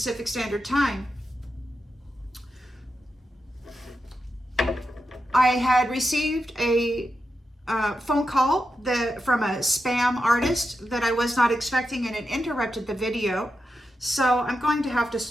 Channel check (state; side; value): normal; both; correlation 0.88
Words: Standard Time. I had received a phone call from a spam artist that I was not expecting, and it interrupted the video. So I'm going to have to